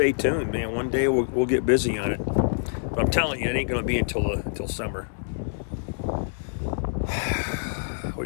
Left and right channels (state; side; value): silent; right; 61 dB below the other